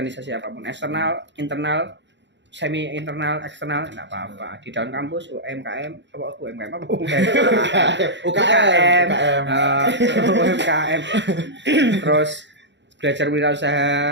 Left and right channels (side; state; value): left; late; 0.52 ms